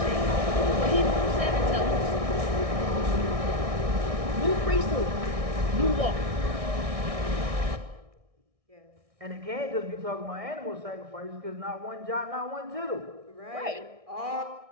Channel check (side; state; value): left; late; 1.6 ms